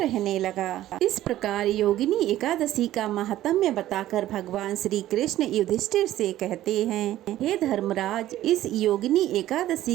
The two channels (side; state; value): left; quieter; 13.9 dB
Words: रहने लगा। इस प्रकार योगिनी एकादशी का महात्म्य बताकर भगवान श्री कृष्ण युधिष्ठिर से कहते हैं, हे धर्मराज, इस योगिनी